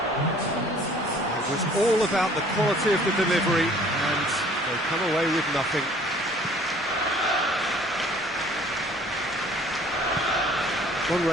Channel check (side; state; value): both; normal; correlation 0.54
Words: It was all about the quality of the delivery, and they come away with nothing.